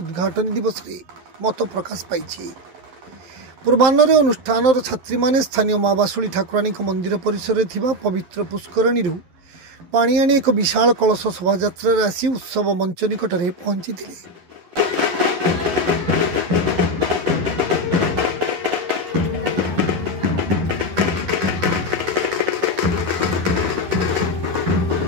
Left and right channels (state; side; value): late; left; 11 ms